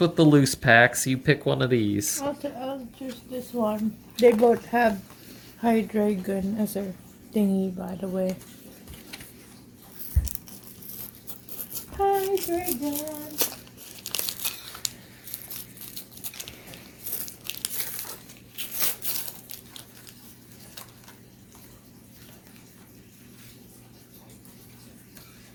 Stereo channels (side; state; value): both; identical; correlation 1.00